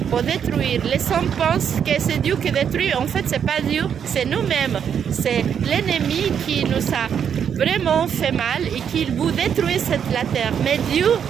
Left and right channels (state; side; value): quieter; left; 8.0 dB